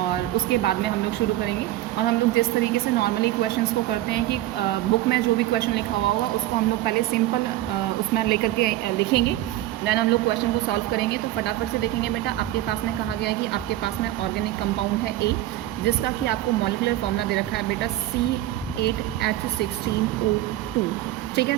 उसके बाद में हम लोग शुरू करेंगे। और हम लोग जिस तरीके से नॉर्मली क्वेश्चंस को करते हैं कि बुक में जो भी क्वेश्चन लिखा हुआ होगा उसको हम लोग पहले सिंपल उसमें लेकर के लिखेंगे, देन हम लोग क्वेश्चन को सॉल्व करेंगे। तो फटाफट से देखेंगे। बेटा आपके पास में कहा गया है कि आपके पास में ऑर्गेनिक कंपाउंड है ए, जिसका कि आपको मॉलिक्यूलर फॉर्मूला दे रखा है बेटा C8H16O2। ठीक है,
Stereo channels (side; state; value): left; quieter; 14.8 dB